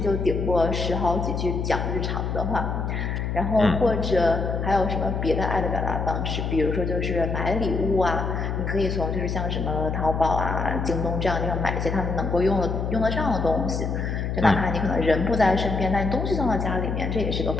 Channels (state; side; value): noise; left; hum, 2 dB below the sound